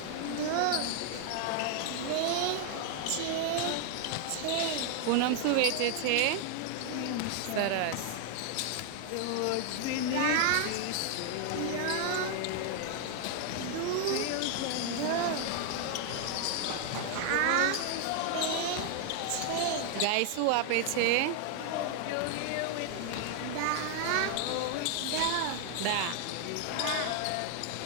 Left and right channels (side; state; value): both; different; correlation 0.00